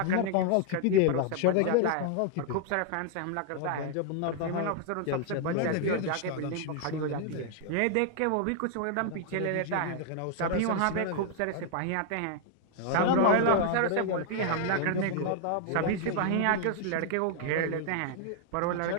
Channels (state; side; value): different; both; correlation 0.00